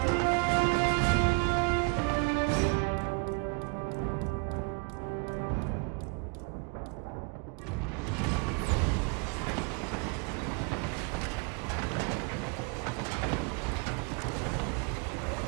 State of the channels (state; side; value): quieter; left; 33.4 dB